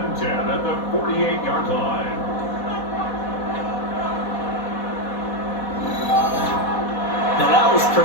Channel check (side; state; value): right; late; 4.1 ms